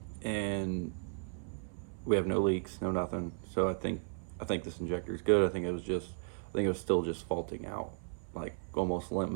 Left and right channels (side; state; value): left; silent; 54 dB below the other